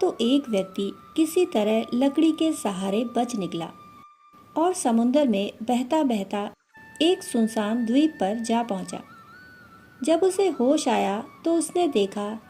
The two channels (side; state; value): both; identical; correlation 1.00